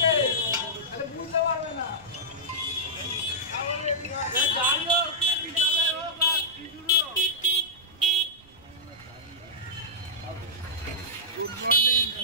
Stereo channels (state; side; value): noise; right; rumble, 26 dB below the sound